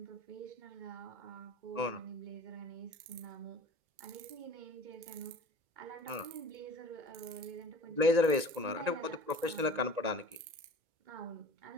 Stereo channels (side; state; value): left; late; 1.9 ms